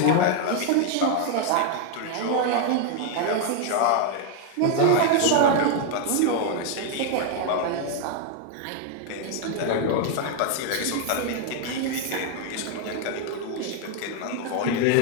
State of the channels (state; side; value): different; both; correlation 0.01